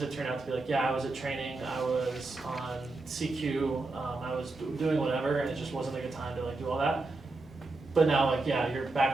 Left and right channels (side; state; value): left; quieter; 3.3 dB